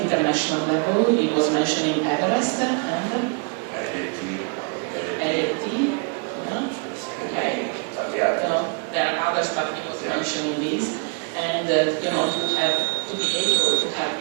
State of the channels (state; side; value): quieter; left; 34.8 dB